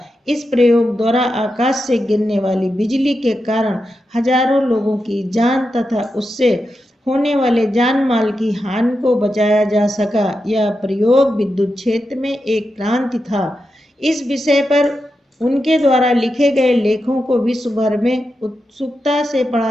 इस प्रयोग द्वारा आकाश से गिरने वाली बिजली के कारण हजारों लोगों की जान तथा उससे होने वाले जान माल की हानि को बचाया जा सका। यह प्रयोग विद्युत क्षेत्र में एक क्रांति था। इस विषय पर उनके द्वारा लिखे गए लेखों को विश्व भर में उत्सुकता से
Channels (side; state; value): both; normal; correlation 0.88